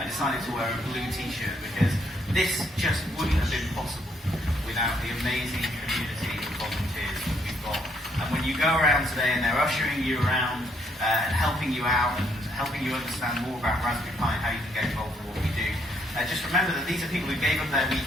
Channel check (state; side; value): normal; both; correlation 0.71